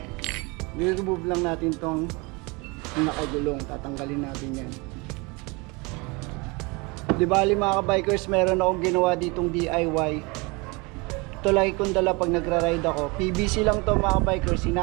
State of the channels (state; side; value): quieter; left; 27.3 dB